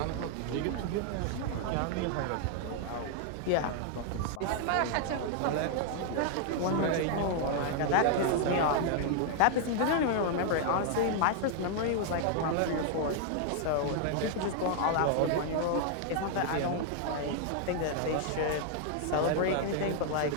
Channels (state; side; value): different; both; correlation 0.00